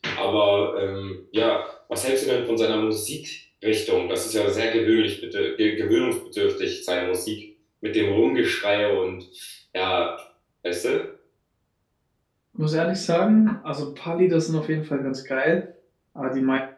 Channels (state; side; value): identical; both; correlation 1.00